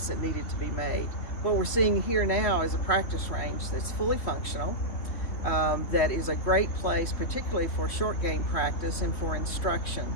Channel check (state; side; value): late; right; 3.1 ms